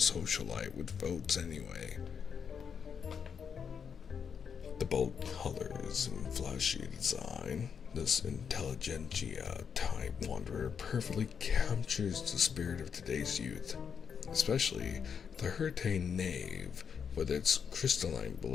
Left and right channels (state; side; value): quieter; right; 6.9 dB